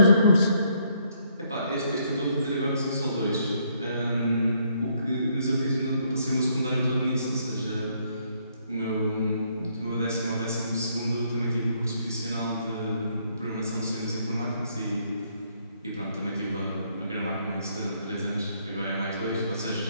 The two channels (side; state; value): both; inverted; correlation -0.70